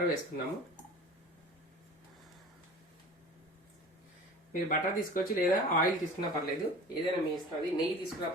వేసుకున్నాము. మీరు బటర్ తీసుకోవచ్చు, లేదా ఆయిల్ తీసుకున్నా పర్లేదు, ఏదైనా మీ ఇష్టం. అది నెయ్యి తీసుకున్నా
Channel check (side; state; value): both; normal; correlation 0.40